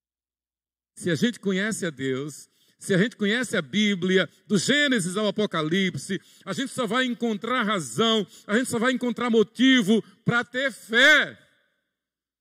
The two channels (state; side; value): identical; both; correlation 1.00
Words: Se a gente conhece a Deus, se a gente conhece a Bíblia, do Gênesis ao Apocalipse, a gente só vai encontrar razão, a gente só vai encontrar motivo para ter fé.